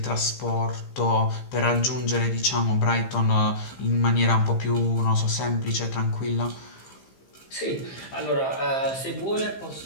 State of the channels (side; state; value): right; late; 15 ms